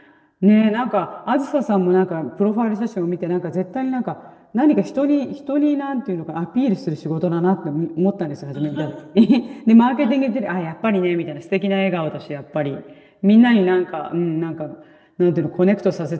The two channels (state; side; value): identical; both; correlation 1.00